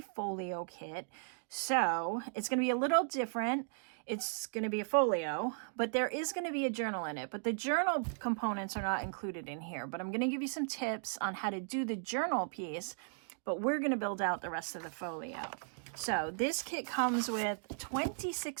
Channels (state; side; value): silent; left; digital silence